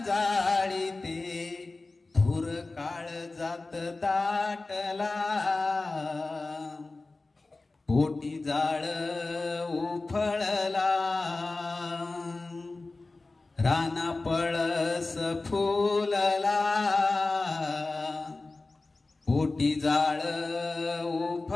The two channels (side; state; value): right; quieter; 3.4 dB